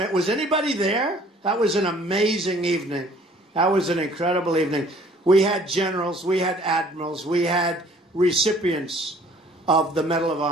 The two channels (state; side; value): normal; both; correlation 0.55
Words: anybody there? That was an amazing evening. That was an incredible evening. We had generals, we had admirals, we had recipients of the Medal of